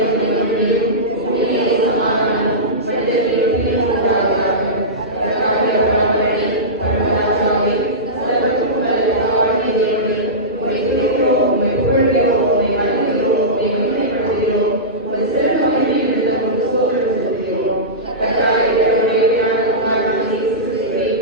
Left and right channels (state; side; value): normal; both; correlation -0.18